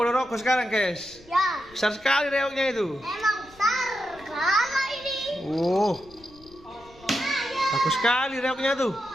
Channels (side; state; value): left; noise; rumble, 25 dB below the sound